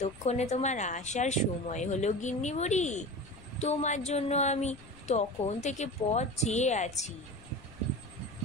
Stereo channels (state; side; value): noise; left; rumble, 22 dB below the sound